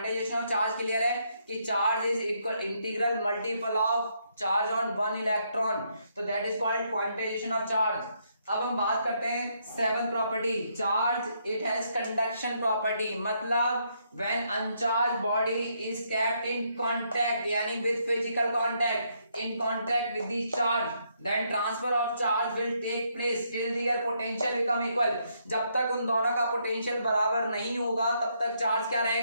ऑफ चार्ज क्लियर है कि charge is equal integral multiple of charge on one electron, तो that is called quantization of charge. अब हम बात करते हैं seven property, charge it has conduction property, मतलब when uncharge body is kept in contact यानी with physical contact, in contact with the charge, then transfer of charge will take place till their potential become equal। जब तक उन दोनों का potential बराबर नहीं होगा तब तक चार्ज क्या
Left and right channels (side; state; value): both; inverted; correlation -0.75